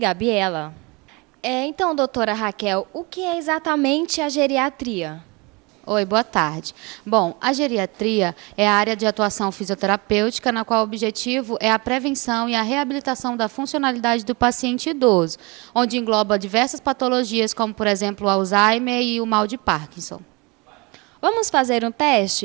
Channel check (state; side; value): quieter; left; 26.9 dB